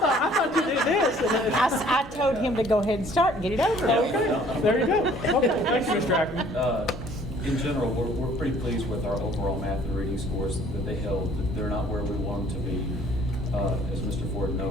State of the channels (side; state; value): both; normal; correlation 0.57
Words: you did this. I told him to go ahead and start and get it over with. Okay, there you go. Okay, thanks, Mr. Ackerman. In general, we're pretty pleased with our overall math and reading scores that they held. They're not where we want them to be. As Mr. Ford